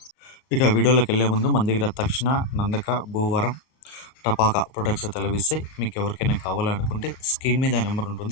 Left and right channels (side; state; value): right; late; 38 ms